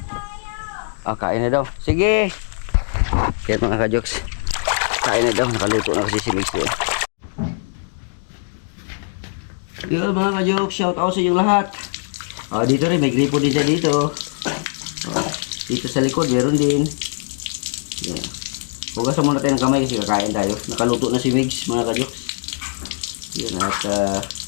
Kain na daw. Sige! Kaya mga ka-Jokes, kain na daw. Nakaluto na kasi si Migs doon. Yun mga ka-Jokes, shout out sa inyong lahat. Dito rin, may gripo din siya dito. Dito sa likod, meron din. Yan. Hugasan muna tayo ng kamay kasi kakain tayo. Nakaluto na si Migs mga ka-Jokes. Yun, at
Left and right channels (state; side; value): silent; right; digital silence